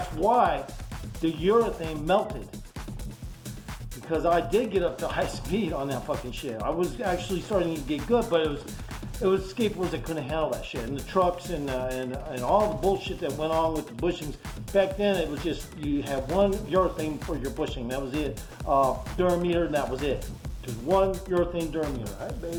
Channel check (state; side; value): identical; both; correlation 1.00